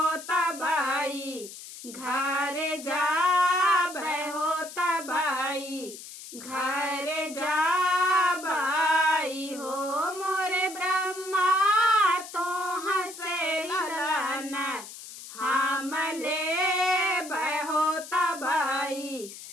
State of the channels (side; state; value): left; noise; hiss, 14 dB below the sound